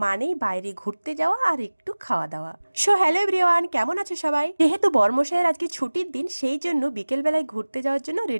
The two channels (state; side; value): inverted; both; correlation -1.00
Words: মানেই বাইরে ঘুরতে যাওয়া আর একটু খাওয়া দাওয়া। সো হ্যালো এভরিওয়ান, কেমন আছো সবাই? যেহেতু বরমশাইয়ের আজকে ছুটির দিন, সেই জন্য বিকেল বেলায় ঘুরতে যাওয়ার জন্য